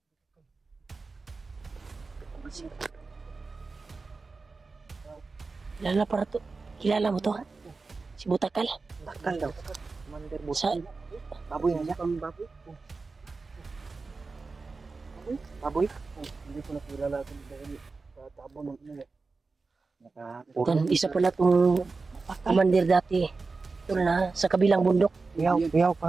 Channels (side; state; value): left; quieter; 4.1 dB